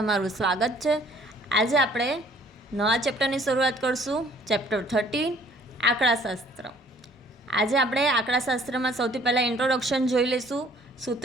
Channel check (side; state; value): both; normal; correlation 0.58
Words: स्वागत है। आज आपणे नवा चेप्टर की शुरुआत करशुं। चेप्टर 13 आंकड़ाशास्त्र। आज आपणे आंकड़ाशास्त्र में सौथी पहला इंट्रोडक्शन जोई लेशुं,